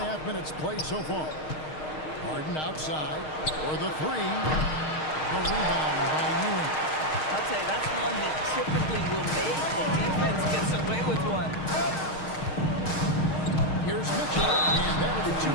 minutes played so far. Harden outside for the three. The rebound by Ewing. I'll tell you, that's one he typically will make. The defense gets away with one. Here's Mitchell, and that'll be 2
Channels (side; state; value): right; late; 6.5 ms